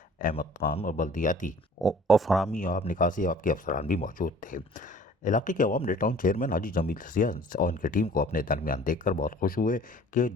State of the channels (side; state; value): both; normal; correlation 0.50